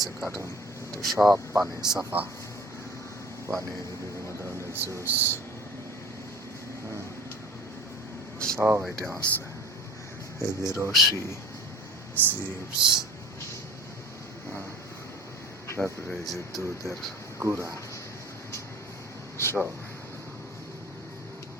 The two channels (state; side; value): normal; both; correlation 0.44